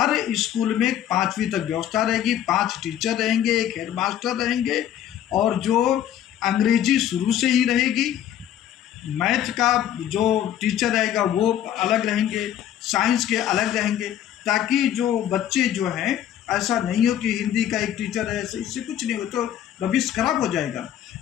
स्कूल में 5वीं तक व्यवस्था रहेगी, 5 टीचर रहेंगे, 1 हेडमास्टर रहेंगे, और जो अंग्रेजी शुरू से ही रहेगी, मैथ का जो टीचर रहेगा वो अलग रहेंगे, साइंस के अलग रहेंगे। ताकि जो बच्चे जो हैं, ऐसा नहीं हो कि हिंदी का एक टीचर है, ऐसे इससे कुछ नहीं हो तो भविष्य खराब हो जाएगा।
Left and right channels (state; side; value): quieter; right; 10.9 dB